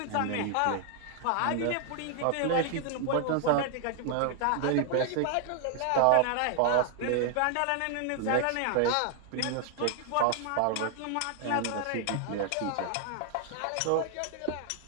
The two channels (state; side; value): different; both; correlation 0.00